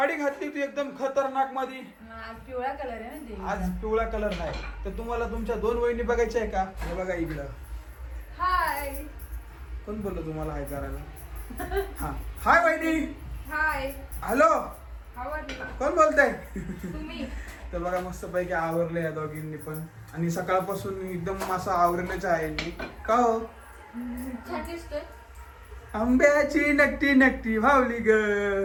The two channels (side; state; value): both; identical; correlation 1.00